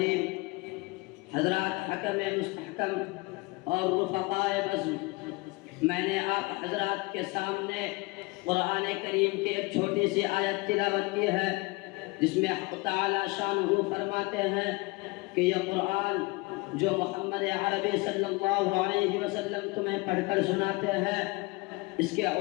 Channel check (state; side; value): quieter; right; 24.7 dB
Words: حضرات حکم مستحکم اور رفقائے بزم، میں نے آپ حضرات کے سامنے قرآن کریم کی ایک چھوٹی سی آیت تلاوت کی ہے جس میں حق تعالی شانہ فرماتے ہیں کہ یہ قرآن جو محمد عربی صلی اللہ علیہ وسلم تمہیں پڑھ کر سناتے ہیں، اس کے